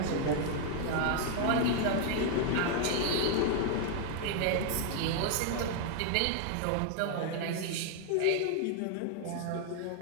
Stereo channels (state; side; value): different; both; correlation 0.00